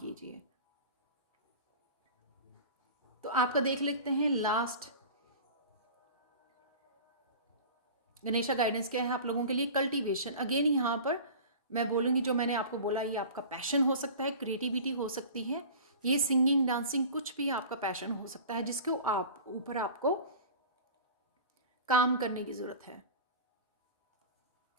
तो आपका देख लेते हैं लास्ट गणेशा गाइडेंस क्या है आप लोगों के लिए। कल्टीवेशन, अगेन यहाँ पर मैं बोलूँगी, जो मैंने आपको बोला, ये आपका पैशन हो सकता है, क्रिएटिविटी हो सकती है, ये सिंगिंग, डांसिंग, कुछ भी आपका पैशन हो सकता है, जिसके ऊपर आपको काम करने की ज़रूरत है।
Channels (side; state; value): both; inverted; correlation -0.37